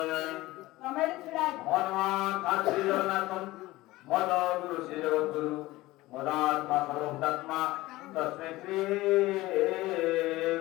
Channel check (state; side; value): quieter; right; 18.6 dB